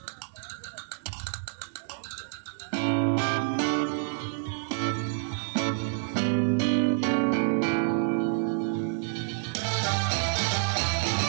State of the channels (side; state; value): left; silent; 59 dB below the other